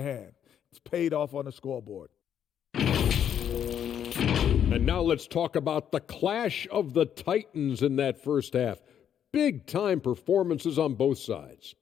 It's paid off on the scoreboard. And now let's talk about the clash of the Titans in that first half. Big-time performances on both sides.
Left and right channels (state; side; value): quieter; right; 9.2 dB